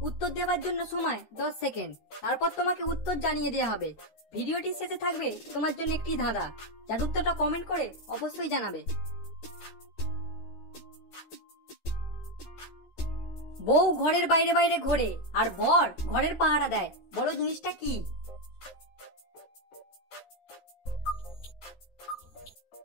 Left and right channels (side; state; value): right; late; 13 ms